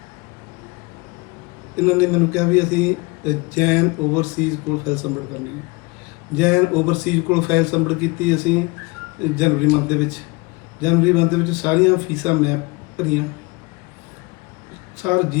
ਇਹਨਾਂ ਨੇ ਮੈਨੂੰ ਕਿਹਾ ਵੀ ਅਸੀਂ ਜੈਨ ਓਵਰਸੀਜ਼ ਕੋਲ ਫਾਈਲ ਸਬਮਿਟ ਕਰਨੀ ਹੈ। ਜੈਨ ਓਵਰਸੀਜ਼ ਕੋਲ ਫਾਈਲ ਸਬਮਿਟ ਕੀਤੀ ਅਸੀਂ ਜਨਵਰੀ ਮੰਥ ਦੇ ਵਿੱਚ। ਜਨਵਰੀ ਮੰਥ ਦੇ ਵਿੱਚ ਸਾਰੀਆਂ ਫੀਸਾਂ ਮੈਂ ਭਰੀਆਂ, ਸਾਰ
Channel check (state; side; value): quieter; right; 26.2 dB